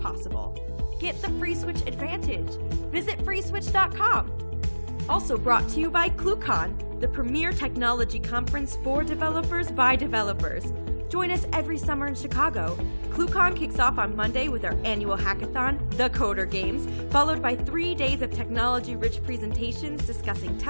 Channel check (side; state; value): both; inverted; correlation -1.00